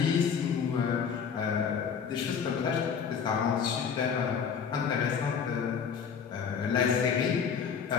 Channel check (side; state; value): right; quieter; 6.8 dB